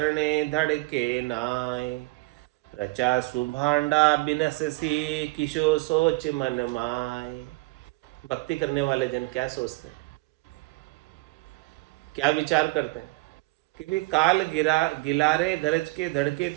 धड़के नाय। रचा सुभांडा बिनस सी किशो सोच मन माय। भक्ति करने वाले जन क्या सोचते हैं, क्या विचार करते हैं? कि भी काल गिरा गिलारे गरज के धड़के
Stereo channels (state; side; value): quieter; left; 23.1 dB